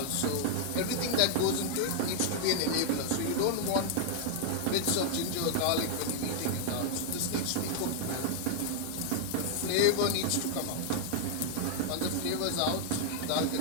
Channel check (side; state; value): both; different; correlation -0.01